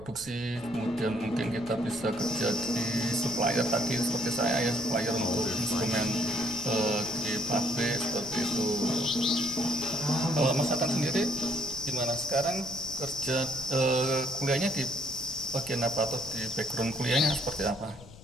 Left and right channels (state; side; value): noise; left; rumble, 19 dB below the sound